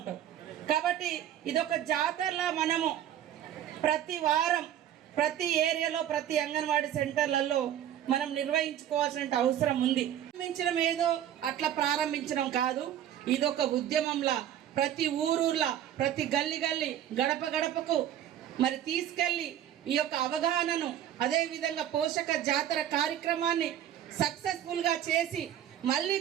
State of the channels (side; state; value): left; quieter; 10.9 dB